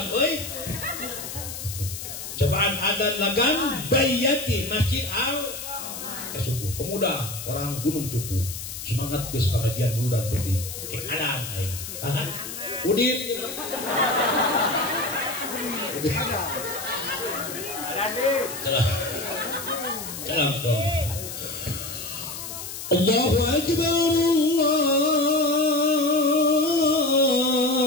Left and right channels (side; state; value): left; noise; hiss, 9 dB below the sound